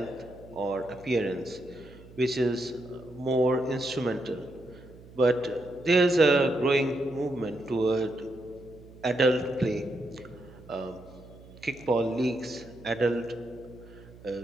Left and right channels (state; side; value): noise; right; hum, 20 dB below the sound